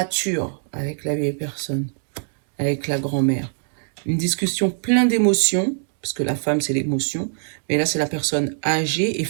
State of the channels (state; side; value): silent; left; digital silence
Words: avec la vieille personne, avec la grand-mère. Une discussion pleine d'émotions, parce que la femme, c'est l'émotion. Mais là, c'est la personne âgée et